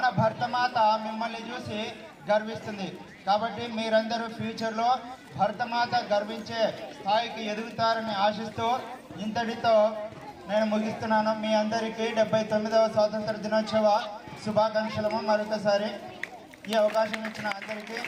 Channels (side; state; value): both; identical; correlation 1.00